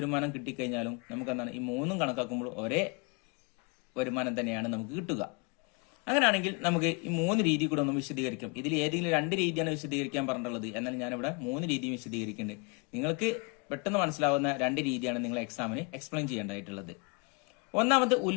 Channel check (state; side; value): quieter; right; 32.1 dB